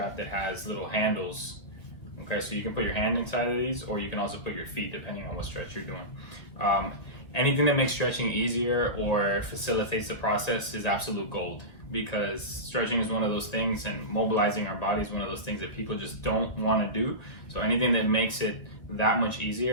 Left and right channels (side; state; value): right; late; 2.0 ms